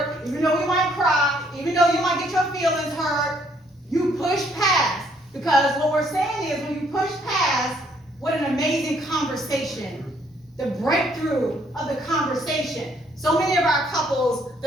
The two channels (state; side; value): normal; both; correlation 0.67